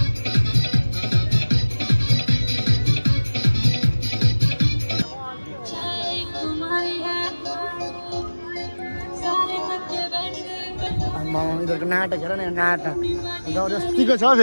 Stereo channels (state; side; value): inverted; both; correlation -1.00